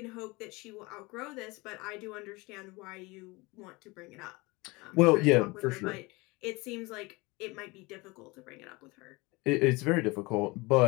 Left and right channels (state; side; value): quieter; right; 24.2 dB